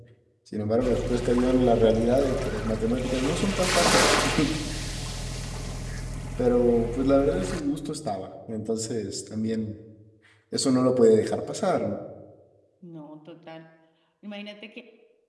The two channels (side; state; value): both; identical; correlation 1.00